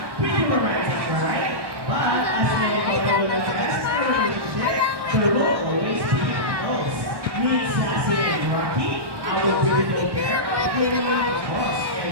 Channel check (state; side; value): late; left; 1.1 ms